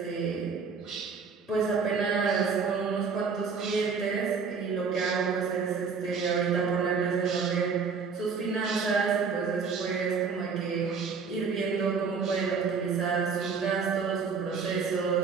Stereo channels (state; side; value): quieter; left; 5.5 dB